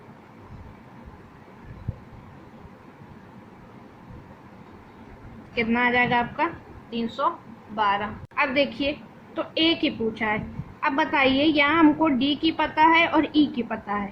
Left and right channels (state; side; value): identical; both; correlation 1.00